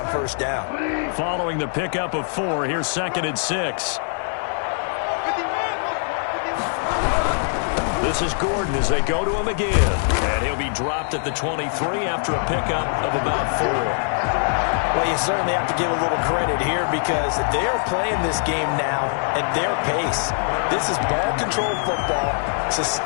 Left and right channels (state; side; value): silent; right; 64 dB below the other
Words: first down. Following the pickup of 4, here's 2nd and 6. This is Gordon as they go to him again. And he'll be dropped at the 23 after a pickup of about 4. Well, you certainly have to give a little credit here because they're playing this game now at their pace. This is ball control football,